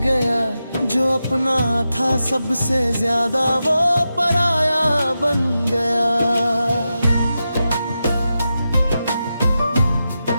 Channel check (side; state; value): both; inverted; correlation -0.90